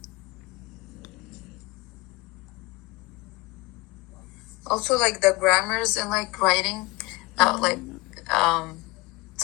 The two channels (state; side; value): quieter; right; 23.7 dB